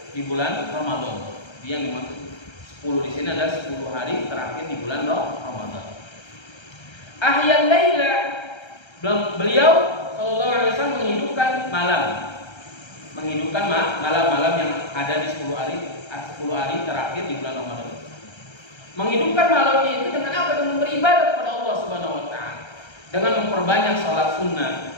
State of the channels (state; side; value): late; right; 1.3 ms